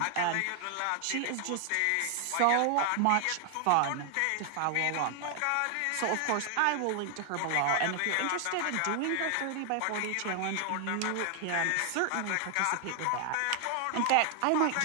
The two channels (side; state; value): both; different; correlation 0.00